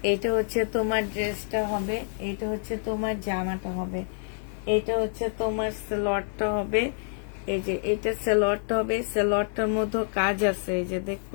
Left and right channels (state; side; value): silent; right; digital silence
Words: এটা হচ্ছে তোমার ড্রেসটা হবে, এটা হচ্ছে তোমার জামাটা হবে, এটা হচ্ছে তোমার সালোয়ারটা হবে। এই যে এটা সালোয়ারটা হবে, সালোয়ারটার মধ্যে কাজ আছে, এই যে